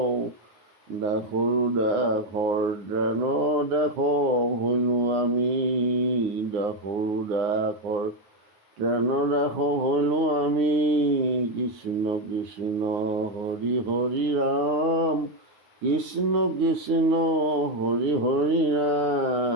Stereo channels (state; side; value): late; left; 9.7 ms